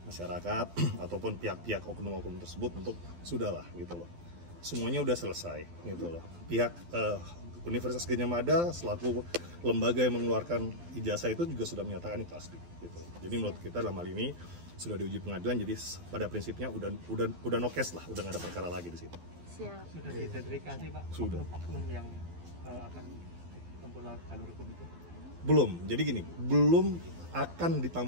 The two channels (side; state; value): left; late; 12 ms